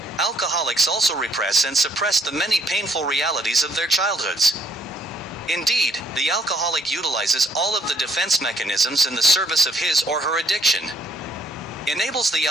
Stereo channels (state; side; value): normal; both; correlation 0.64